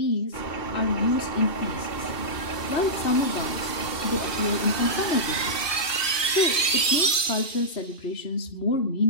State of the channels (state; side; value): late; right; 2.7 ms